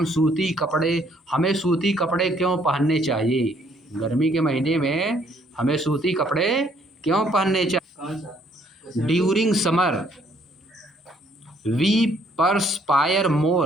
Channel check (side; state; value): both; normal; correlation 0.65